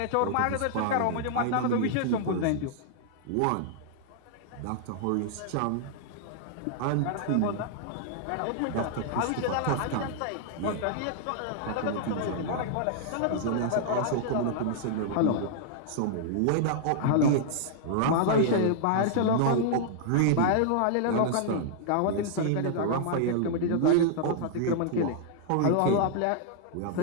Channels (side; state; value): both; different; correlation -0.01